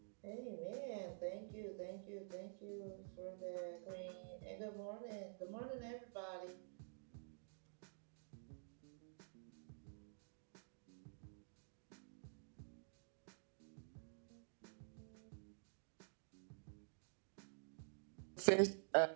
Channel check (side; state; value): left; silent; digital silence